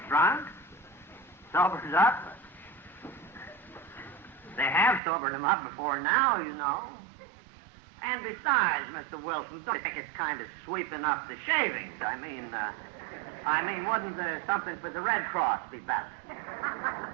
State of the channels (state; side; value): drops out; left; at 5.0 s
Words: drunk? Sobers up? They have sobered him up before now, you know. And besides, Mr. Wilson, don't you think it's kind of sweeping up the shavings? I mean, wouldn't something for the Red Cross be better?